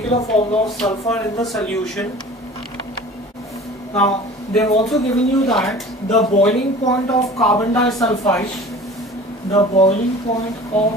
formula of sulfur in the solution? Now, they've also given you that the boiling point of carbon disulfide,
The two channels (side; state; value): both; normal; correlation 0.42